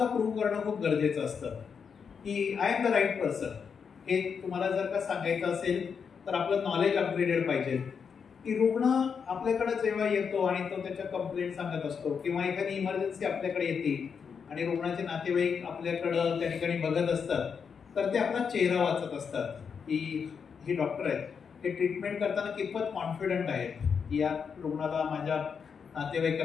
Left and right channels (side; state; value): right; quieter; 6.4 dB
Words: प्रूव्ह करणं खूप गरजेचं असतं की I am the right person. हे तुम्हाला जर का सांगायचं असेल तर आपलं नॉलेज अपग्रेडेड पाहिजे. की रुग्ण आपल्याकडे जेव्हा येतो आणि तो त्याच्या कंप्लेंट सांगत असतो किंवा एखादी इमर्जन्सी आपल्याकडे येते आणि रुग्णाचे नातेवाईक आपल्याकडं त्या ठिकाणी बघत असतात, तर ते आपला चेहरा वाचत असतात की हे डॉक्टर आहेत, हे ट्रीटमेंट करताना कितपत कॉन्फिडंट आहेत, या रुग्णाला माझ्या